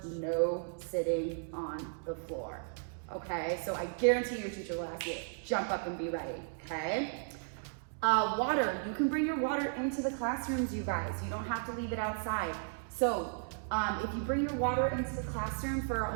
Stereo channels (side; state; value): left; silent; digital silence